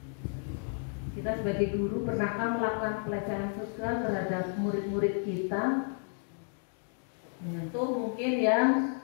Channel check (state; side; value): silent; right; 56 dB below the other